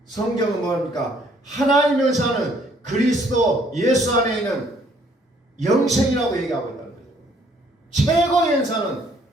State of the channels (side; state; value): both; normal; correlation 0.63